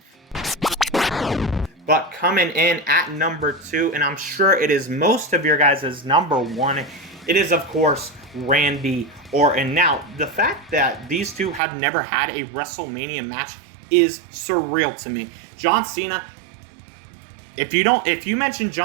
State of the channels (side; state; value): left; drops out; at 11.6 s